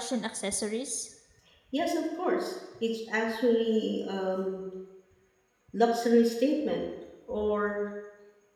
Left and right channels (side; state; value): both; identical; correlation 1.00